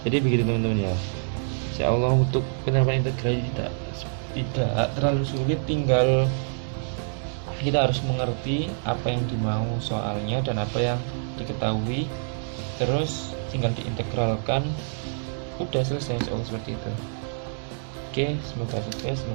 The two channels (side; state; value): left; silent; digital silence